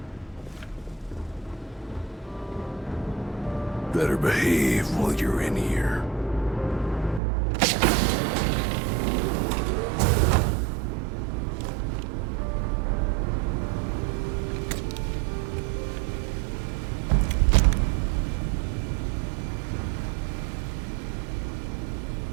Better behave while you're in here.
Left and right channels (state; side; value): drops out; left; at 7.2 s